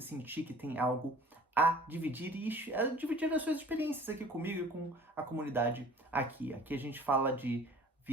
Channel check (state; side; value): normal; both; correlation 0.48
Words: sentir que tem algo a dividir e dividir as suas experiências aqui comigo e com a comunidade aqui. Aqui a gente fala de